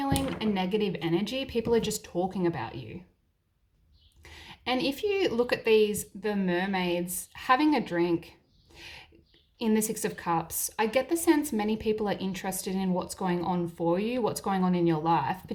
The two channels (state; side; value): identical; both; correlation 1.00